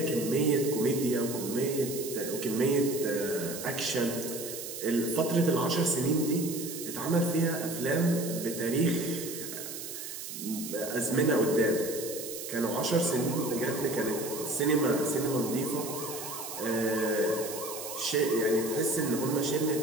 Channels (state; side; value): noise; right; hiss, 8 dB below the sound